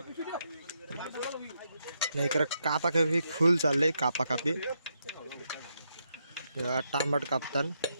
नाही इकडे कापा कापी फुल चाललंय. कापा कापी टांबट कापतान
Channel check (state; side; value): inverted; both; correlation -0.81